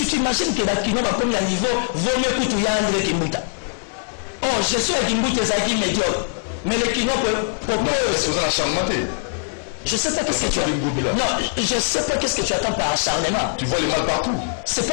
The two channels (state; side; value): silent; right; digital silence